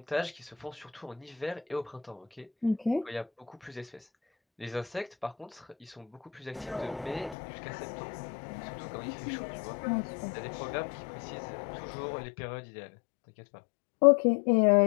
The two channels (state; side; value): drops out; right; at 7.4 s